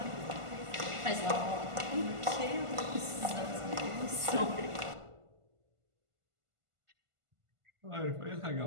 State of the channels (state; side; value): late; left; 1.5 ms